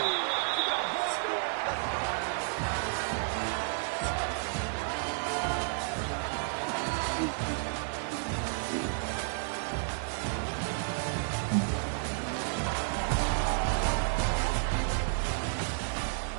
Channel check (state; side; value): silent; left; 57 dB below the other